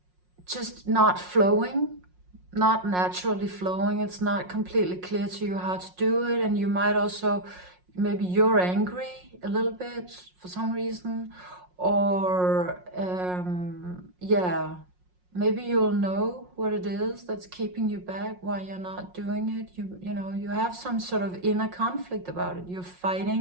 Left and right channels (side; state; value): left; late; 5.5 ms